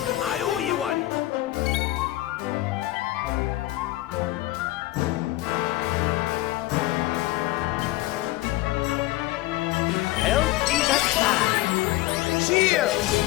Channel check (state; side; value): quieter; right; 17.5 dB